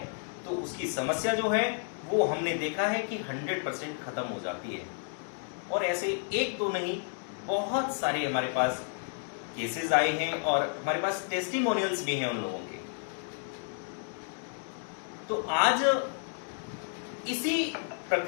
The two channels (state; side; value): silent; right; 57 dB below the other